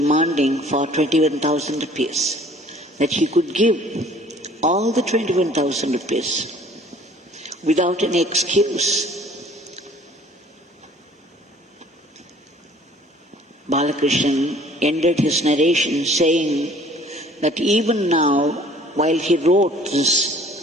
for 21,000 rupees, that he could give all the 21,000 rupees without any excuse. Balakrishna ended his narration saying that even now, while he wrote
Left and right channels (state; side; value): normal; both; correlation 0.53